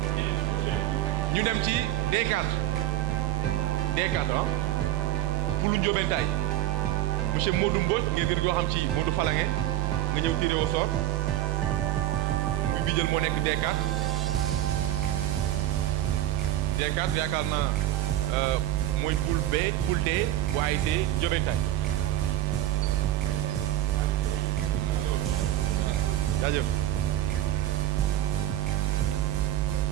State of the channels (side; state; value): left; quieter; 13.6 dB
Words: ñu dem ci D4 pour lu Ndiobentaay monsieur Modou Mbodj ngeen gën koo xam ci Modou Falange nga ñëw tiré au sort muy bi jël moo nekk D4 yaakaar naa mooy poule B poule D bu ASC Ndiobentaay jaajëf